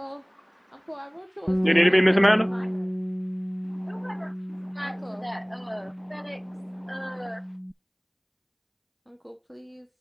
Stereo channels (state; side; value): identical; both; correlation 1.00